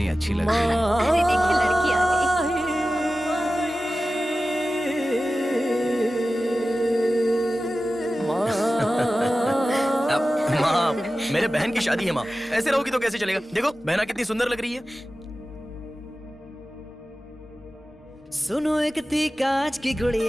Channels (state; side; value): normal; both; correlation 0.95